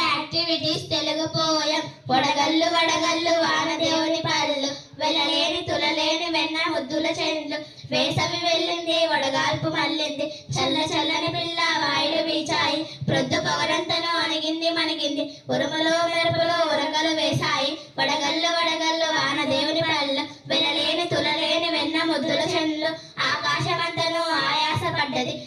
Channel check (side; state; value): both; identical; correlation 1.00